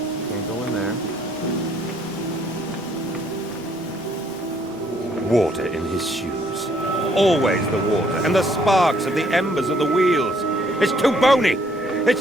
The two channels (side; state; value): right; noise; rumble, 27 dB below the sound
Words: Can't go in there. Water in his shoes. Always the water, and the sparks of the embers of the wheels. It's too bony!